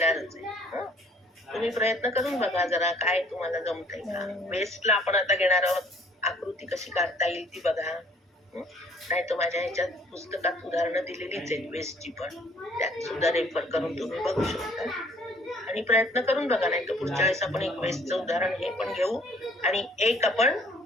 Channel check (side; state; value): both; normal; correlation 0.59